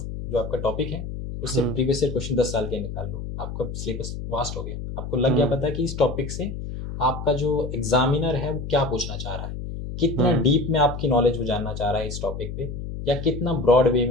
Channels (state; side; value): noise; left; hum, 7 dB below the sound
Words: जो आपका टॉपिक है उससे प्रीवियस ईयर क्वेश्चन 10 साल के निकाल लो, आपका सिलेबस वास्ट हो गया। आपको लग गया पता कि इस टॉपिक से आपका जो एग्जामिनर है वो क्या पूछना चाह रहा है, कितना डीप में आपकी नॉलेज वो जानना चाह रहा है इस टॉपिक पे, या कितना ब्रॉड वे